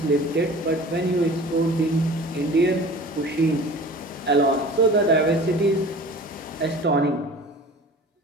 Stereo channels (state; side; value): normal; both; correlation 0.41